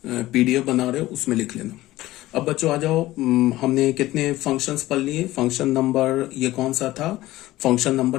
पीडीएफ बना रहे हो उसमें लिख लेना। अब बच्चों आ जाओ, हमने कितने फंक्शंस पढ़ लिए, फंक्शन नंबर ये कौन सा था, फंक्शन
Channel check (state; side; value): quieter; right; 16.7 dB